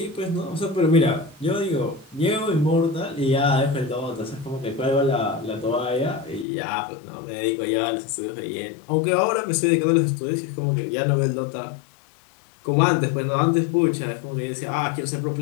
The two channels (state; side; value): drops out; right; at 6.5 s